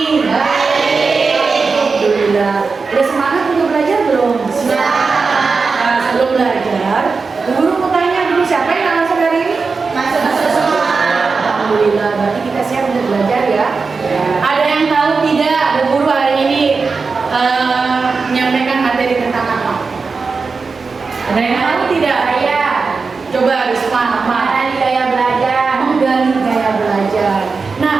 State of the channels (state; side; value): quieter; left; 4.6 dB